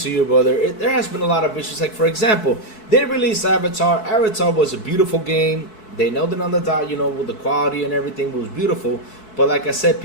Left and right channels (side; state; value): right; late; 4.6 ms